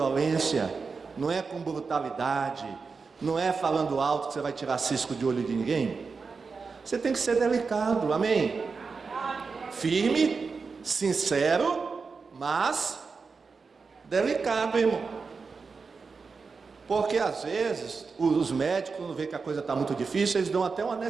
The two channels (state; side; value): quieter; left; 4.8 dB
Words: não é com brutalidade, não é falando alto que você vai tirar cisco de olho de ninguém. Você tem que ser delicado, amém? Firme, sincero, mas delicado, irmão. Porque às vezes os médicos, quando vê que a coisa está muito difícil, eles dão até uma